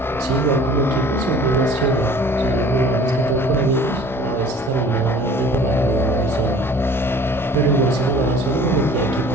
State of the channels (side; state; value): both; normal; correlation 0.48